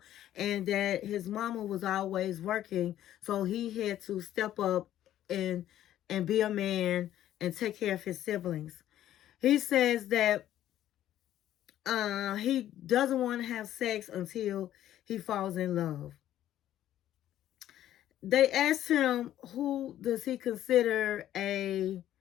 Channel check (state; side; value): quieter; right; 12.3 dB